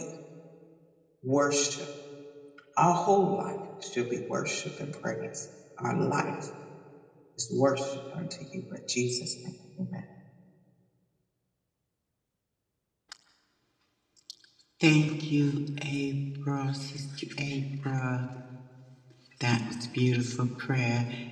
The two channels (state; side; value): identical; both; correlation 1.00